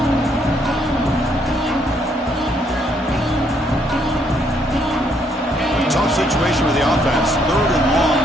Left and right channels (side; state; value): both; normal; correlation 0.70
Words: Tough situation with the offense. 3rd and long